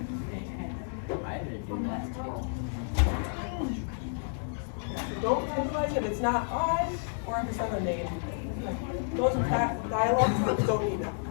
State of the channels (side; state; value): right; silent; digital silence